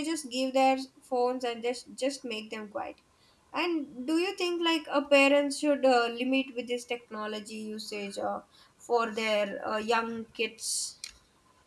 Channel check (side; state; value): both; identical; correlation 1.00